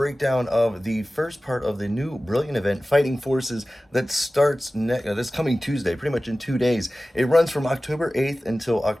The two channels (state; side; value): normal; both; correlation 0.96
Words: of the first part of the new Brilliant event, Fighting Forces, that starts this coming Tuesday, pretty much in 2 days. It runs from October 8th until